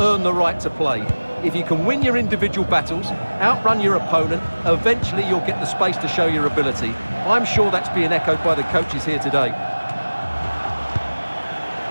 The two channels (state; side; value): inverted; both; correlation -1.00